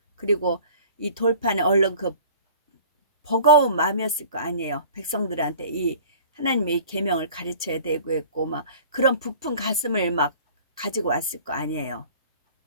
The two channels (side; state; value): both; inverted; correlation -0.45